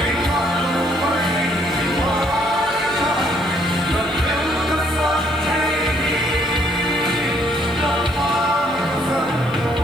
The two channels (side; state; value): right; noise; hiss, 27 dB below the sound